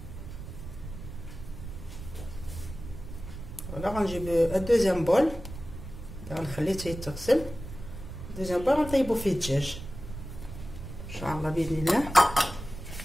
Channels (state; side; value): noise; right; rumble, 11 dB below the sound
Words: فوالا غنجيب الدوزيام بول، غنخليه حتى يتغسل. دوزيام بول غنطيبو فيه الدجاج ان شاء الله باذن الله.